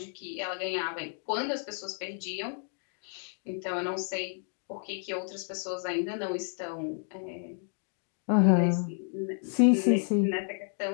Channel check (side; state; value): right; silent; 57 dB below the other